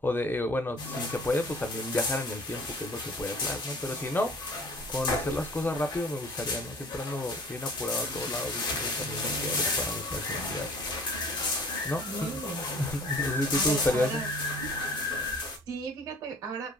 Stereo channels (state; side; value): normal; both; correlation 0.50